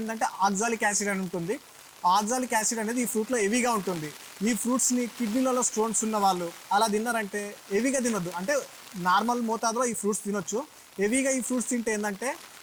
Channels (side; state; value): both; identical; correlation 1.00